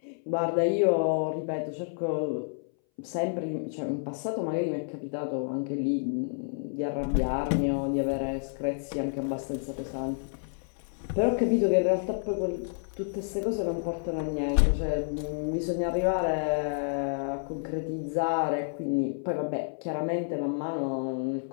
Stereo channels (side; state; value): right; silent; 58 dB below the other